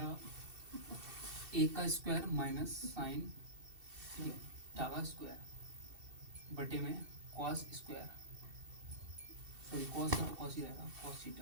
a का स्क्वायर माइनस साइन थीटा का स्क्वायर बटे में कॉस स्क्वायर, सॉरी कॉस का कॉस ही रहेगा कॉस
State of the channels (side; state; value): left; late; 2.7 ms